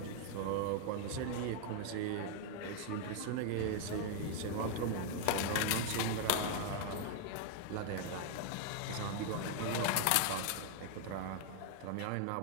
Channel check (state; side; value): different; both; correlation 0.00